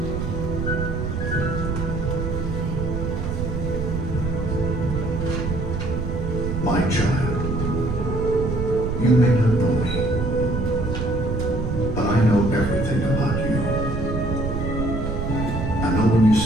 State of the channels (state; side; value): noise; right; rumble, 3 dB below the sound